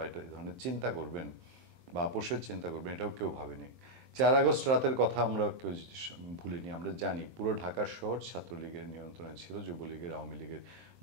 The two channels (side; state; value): left; late; 23 ms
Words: এটা ধরনের চিন্তা করবেন বা আপোষের চিন্তা করবেন, এটাও কেউ ভাবেনি। 4 আগস্ট রাতের কথা আমরা কেউ ভুলিনি। আমরা জানি পুরো ঢাকা শহর ছাত্রলীগের নিয়ন্ত্রণে ছিল, যুবলীগের, আওয়ামী লীগের